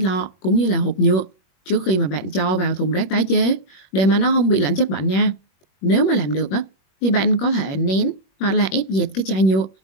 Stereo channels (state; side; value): late; right; 21 ms